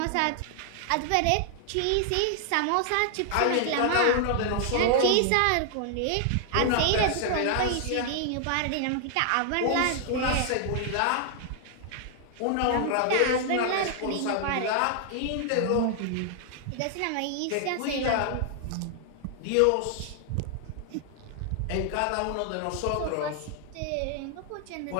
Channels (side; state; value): both; different; correlation 0.00